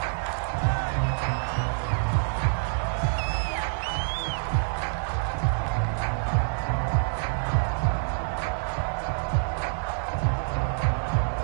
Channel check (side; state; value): left; silent; 56 dB below the other